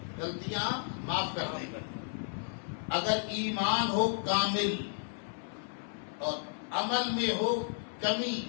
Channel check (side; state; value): right; silent; 56 dB below the other